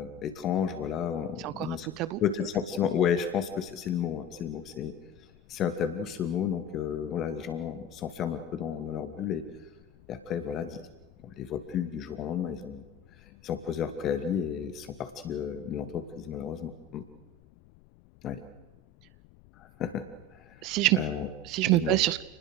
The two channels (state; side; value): noise; left; rumble, 25 dB below the sound